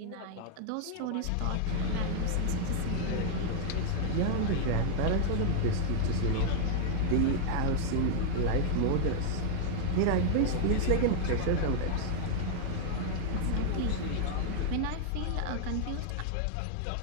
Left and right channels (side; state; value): both; different; correlation 0.00